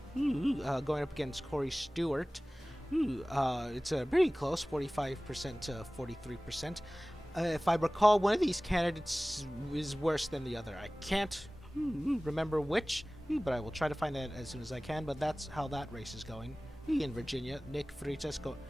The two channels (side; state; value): both; normal; correlation 0.98